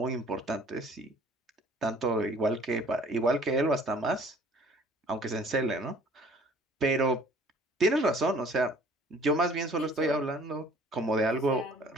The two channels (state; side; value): normal; both; correlation 0.54